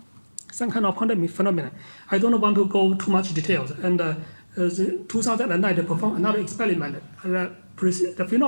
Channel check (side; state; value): both; inverted; correlation -1.00